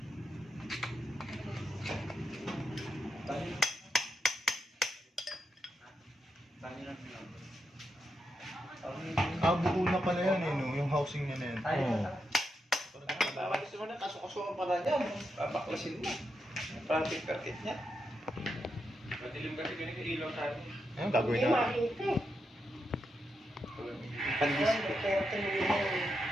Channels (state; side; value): normal; both; correlation 0.85